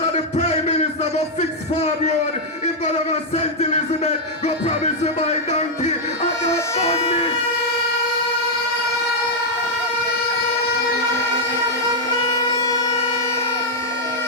of the Prime Minister go fix farm road, if go to St. Elizabeth, go promise to buy donkey, and that burned me.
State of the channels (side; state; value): both; normal; correlation -0.03